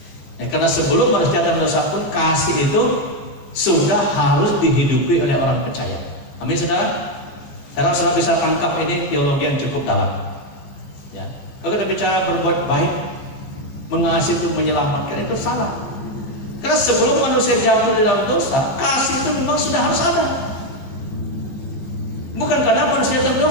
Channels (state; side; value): late; right; 15 ms